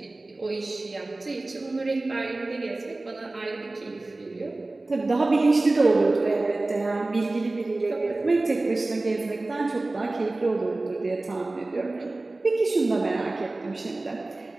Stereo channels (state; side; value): quieter; left; 3.0 dB